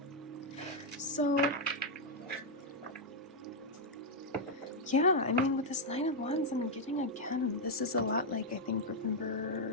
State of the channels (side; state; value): both; normal; correlation -0.02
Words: So yeah, I mean, with this 9 of Wands, I'm getting again, this is a lot like, I think, group